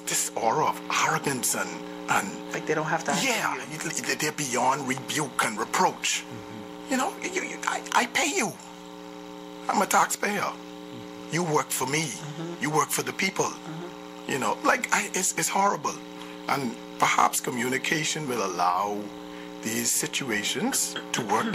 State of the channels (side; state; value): both; identical; correlation 1.00